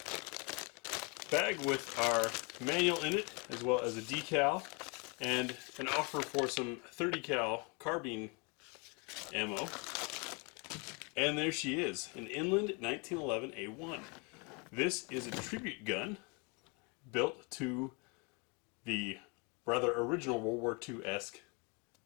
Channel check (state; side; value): quieter; right; 31.8 dB